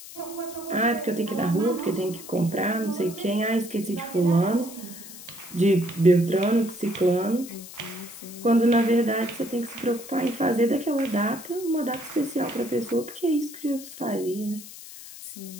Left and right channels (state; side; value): noise; left; hiss, 15 dB below the sound